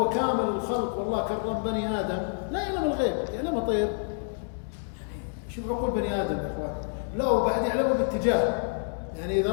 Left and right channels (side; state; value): right; silent; digital silence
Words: كامل الخلق، والله كرم بني آدم، لا يعلم الغيب، يعلم طير. شوف عقول بني آدم يا إخوان، لا وبعد يعلمه باتجاه، يعني إذا